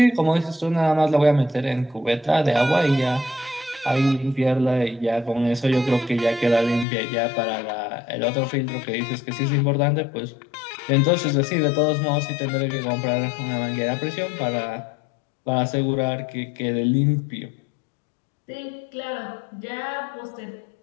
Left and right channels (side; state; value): right; drops out; at 6.9 s